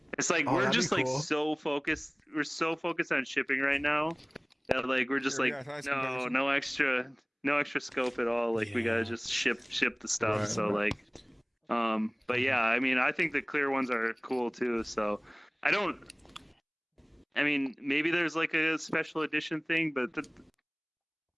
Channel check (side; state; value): both; identical; correlation 1.00